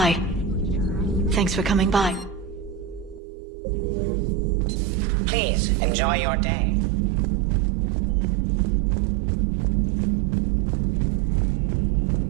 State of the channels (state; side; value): drops out; left; at 3.2 s